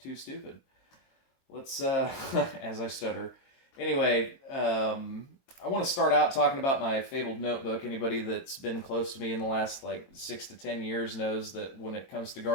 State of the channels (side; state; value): right; late; 23 ms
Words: stupid. Let's as I stutter. Anyway, I want to start out talking about my fabled notebook. Anybody that's been close to me in the last like 6 to 10 years knows that when it comes to